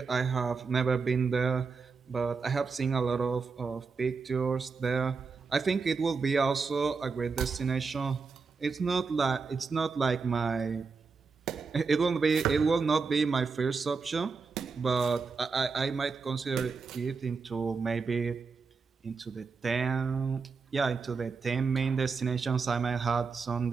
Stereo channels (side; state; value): left; quieter; 4.9 dB